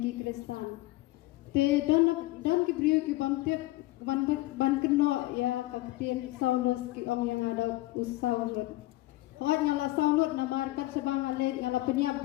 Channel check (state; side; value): quieter; right; 18.6 dB